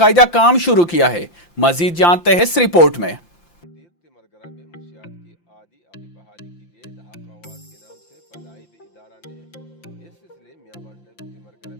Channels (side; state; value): right; late; 5.8 ms